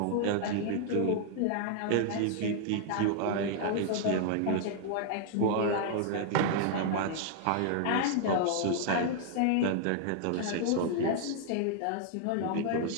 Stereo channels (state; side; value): different; both; correlation 0.00